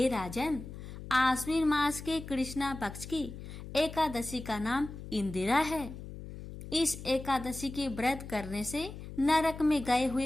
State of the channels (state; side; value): noise; left; hum, 11 dB below the sound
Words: राजन, आश्विन मास के कृष्णा पक्ष की एकादशी का नाम इंदिरा है। इस एकादशी के व्रत करने से नरक में गए